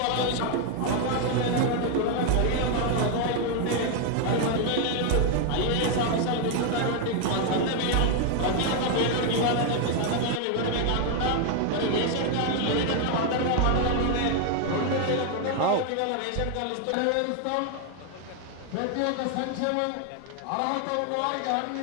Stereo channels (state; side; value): different; both; correlation 0.00